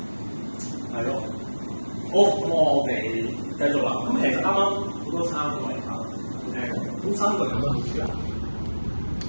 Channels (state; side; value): inverted; both; correlation -1.00